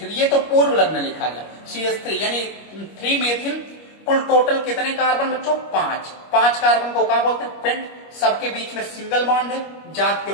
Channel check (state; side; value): late; right; 25 ms